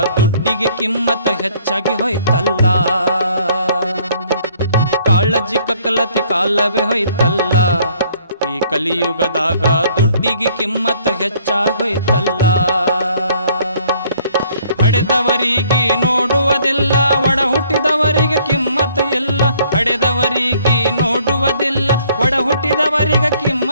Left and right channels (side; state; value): both; inverted; correlation -0.61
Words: ದುಡ್ಡಿಗೆ ಕಿಮ್ಮತ್ತ ಹೆಚ್ಚಾಗಿ ಹೋಯ್ತಲ್ಲ. ಕಾಳಜಿ ಕಕ್ಕಲತಿ ಕಾಲವೇ ಹೋಯ್ತಲ್ಲ, ಈ ಕಲಿಯುಗದಾಗ ದುಡ್ಡಿಗೆ ಕಿಮ್ಮತ್ತ ಹೆಚ್ಚಾಗೋಯ್ತಲ್ಲ. ಹಡೆದವರಿಗೆ ನೋಡುವುದಿಲ್ಲ, ಒಡ ಹುಟ್ಟಿದವರಿಗೆ ಕಿಮ್ಮತ್ತು ಇಲ್ಲ. ಹಡೆದವರಿಗೆ ನೋಡುವುದಿಲ್ಲ, ಒಡ ಹುಟ್ಟಿದವರಿಗೆ